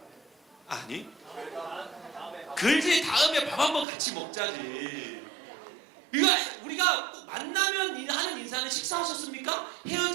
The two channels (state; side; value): drops out; left; at 3.9 s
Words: 아니. 글지 다음에 밥 한번 같이 먹자지. 우리가 꼭 만나면 하는 인사는 식사하셨습니까?